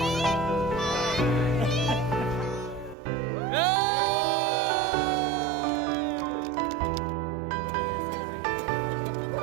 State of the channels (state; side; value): drops out; left; at 3.0 s